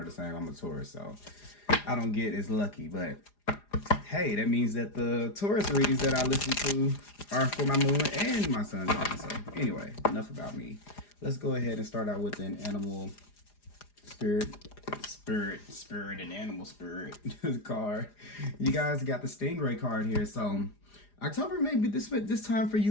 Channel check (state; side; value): late; right; 4.9 ms